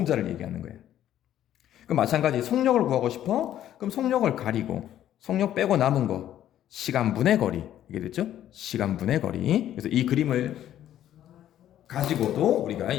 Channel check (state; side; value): quieter; right; 11.7 dB